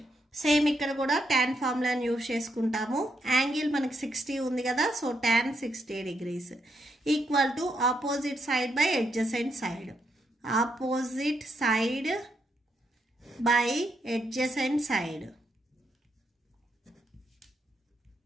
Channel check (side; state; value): both; normal; correlation 0.79